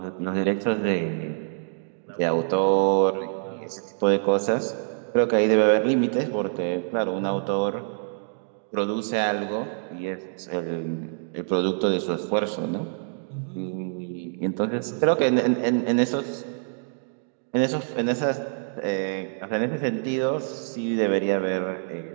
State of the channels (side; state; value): left; silent; digital silence